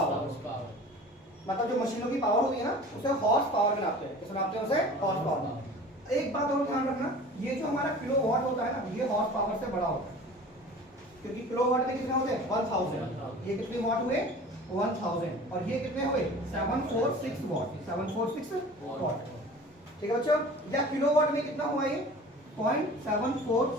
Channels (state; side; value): normal; both; correlation 0.42